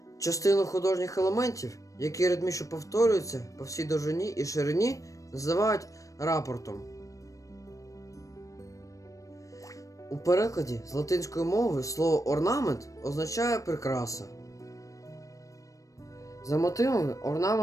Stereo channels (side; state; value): right; late; 0.16 ms